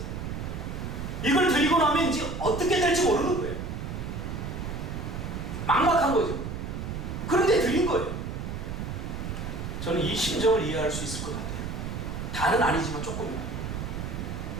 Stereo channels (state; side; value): noise; right; rumble, 5 dB below the sound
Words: 이걸 드리고 나면 이제 어떻게 될지 모르는 거예요. 막막한 거죠. 그런데 드린 거예요. 저는 이 심정을 이해할 수 있을 것 같아요. 다는 아니지만 조금이나.